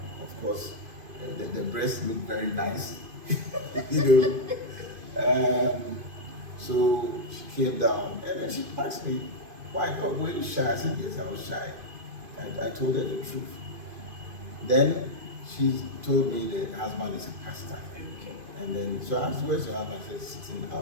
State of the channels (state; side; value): late; left; 2.5 ms